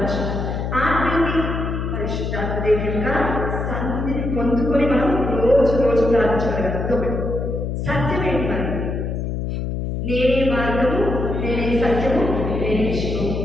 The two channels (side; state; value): left; noise; hum, 3 dB below the sound